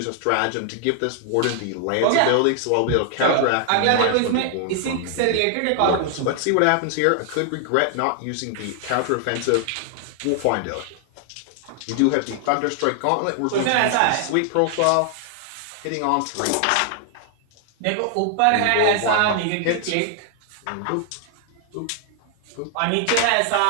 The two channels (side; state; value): both; different; correlation 0.00